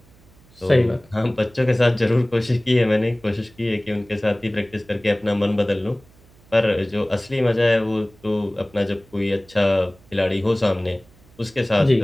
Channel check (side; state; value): right; noise; hum, 28 dB below the sound